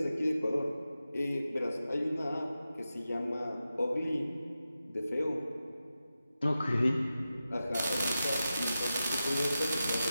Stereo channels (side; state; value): both; inverted; correlation -0.92